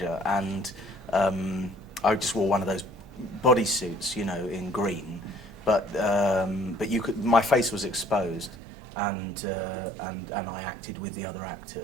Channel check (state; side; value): drops out; left; at 8.6 s